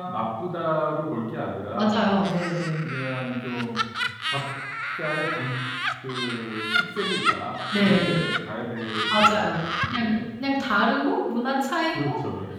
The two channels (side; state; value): both; identical; correlation 1.00